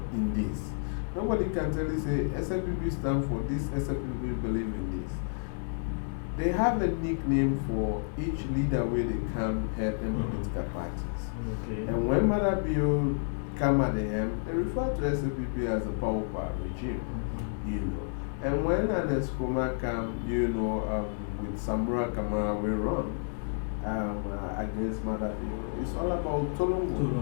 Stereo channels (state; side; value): silent; right; digital silence